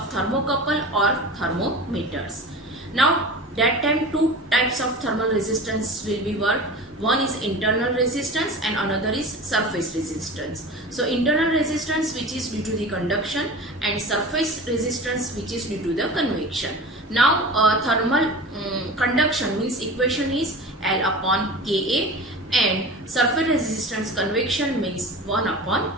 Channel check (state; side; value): normal; both; correlation 0.34